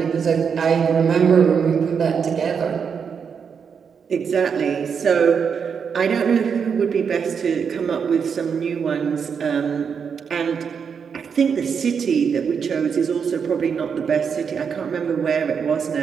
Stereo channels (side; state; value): left; quieter; 6.6 dB